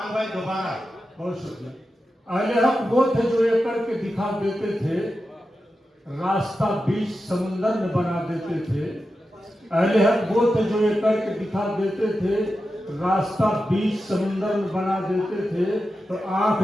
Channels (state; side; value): normal; both; correlation 0.91